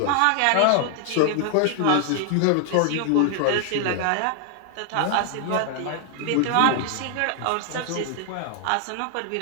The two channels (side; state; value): both; different; correlation 0.00